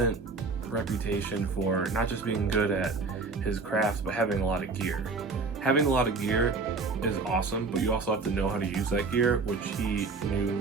reputation for not just being good at his craft, but having a lot of gear. Having a lot of gear is awesome, but you also have to know how to use that gear, which he knew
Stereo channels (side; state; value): left; quieter; 4.1 dB